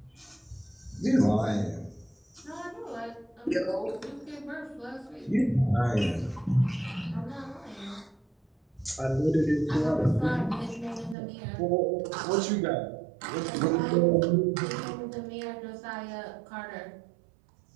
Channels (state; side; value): drops out; left; at 11.2 s